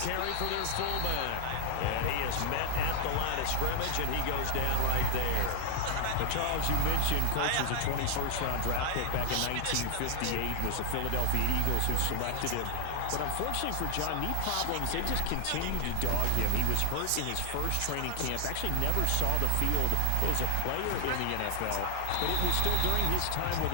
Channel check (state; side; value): different; both; correlation 0.00